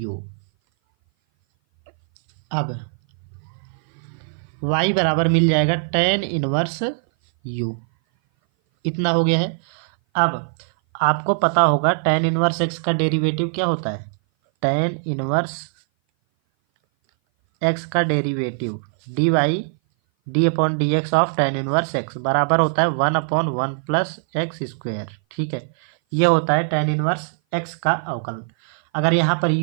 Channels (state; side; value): silent; left; 58 dB below the other